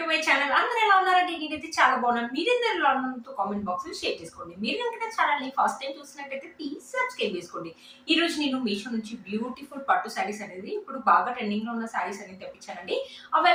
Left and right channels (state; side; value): identical; both; correlation 1.00